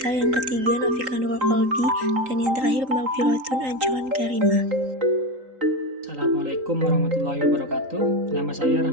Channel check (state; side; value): late; left; 3.8 ms